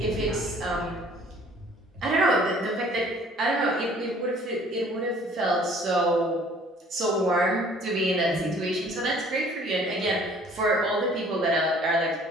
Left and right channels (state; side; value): normal; both; correlation 0.55